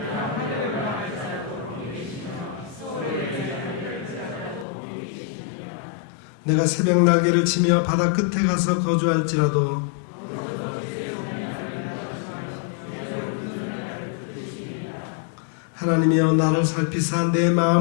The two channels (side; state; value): right; drops out; at 4.7 s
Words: 내가 새벽 날개를 치며 바다 끝에 가서 거주할지라도 하나님이여, 나를 살피사 내